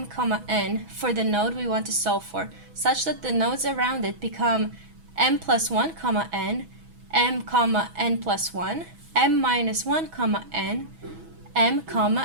n for the node we want to solve for, such that the nodes around it become m plus 1, n, m, n plus 1, m minus 1, n, m,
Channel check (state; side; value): late; left; 6.1 ms